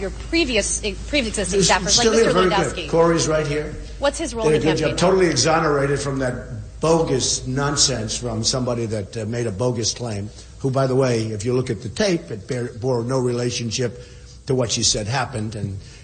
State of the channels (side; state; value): both; identical; correlation 1.00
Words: your pre-existing staffers, like Mr. Lewandowski? Corey's right here. What's his role in the campaign? Totally exonerated from that bogus nonsense from somebody that made a bogus claim, who, by the way, if you look at the tape, it bore no relationship to what she said happened. And